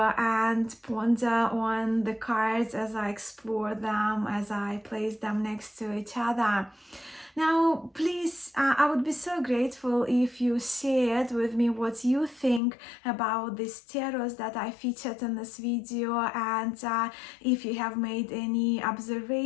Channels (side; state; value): right; drops out; at 12.6 s